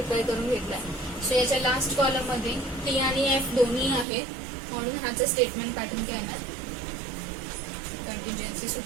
करून घेतला. सो याच्या लास्ट कॉलम मध्ये टी आणि एफ दोन्ही आहेत, म्हणून ह्याचं स्टेटमेंट पॅटर्न काय येणार, कंटिन्जन्सी. सो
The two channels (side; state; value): left; drops out; at 4.0 s